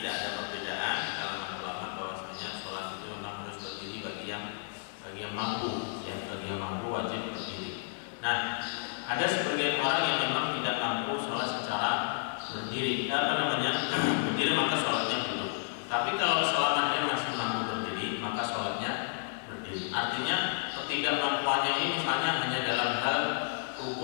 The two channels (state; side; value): silent; right; digital silence